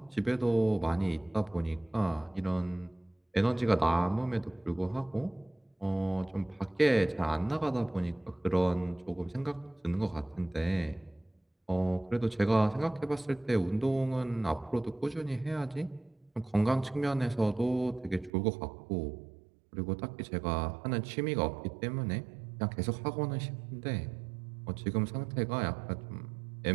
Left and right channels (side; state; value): left; drops out; at 18.3 s